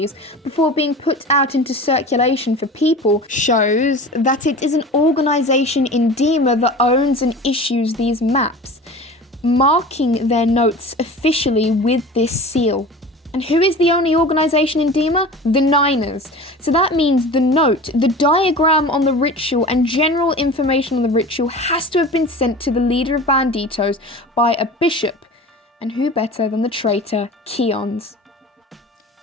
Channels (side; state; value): both; normal; correlation 0.36